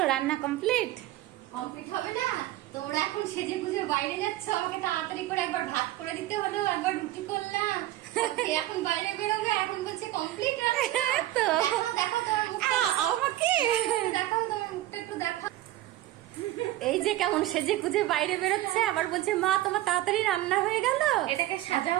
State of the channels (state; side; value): quieter; left; 15.2 dB